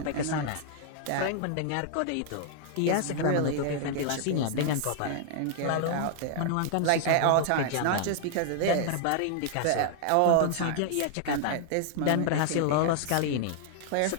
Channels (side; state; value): both; different; correlation -0.01